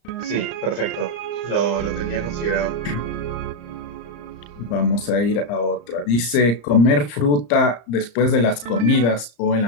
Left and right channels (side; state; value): right; late; 34 ms